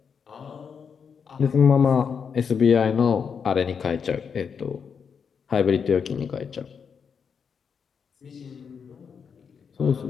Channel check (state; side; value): quieter; right; 6.5 dB